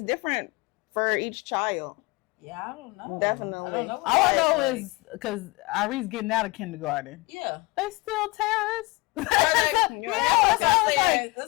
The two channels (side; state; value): right; quieter; 24.5 dB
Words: different for each child. Yeah, I don't know. Definitely. I don't know. All I know is because Irene's getting out of kindergarten. Yeah. They still terrorists. That's what I